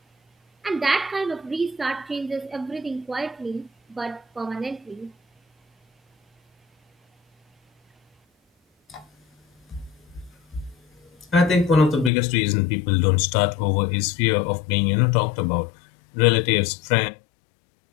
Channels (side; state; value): right; drops out; at 12.1 s